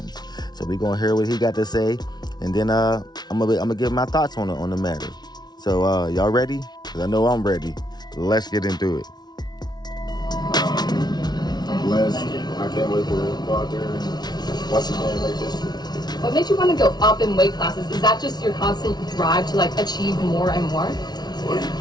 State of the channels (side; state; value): right; late; 0.19 ms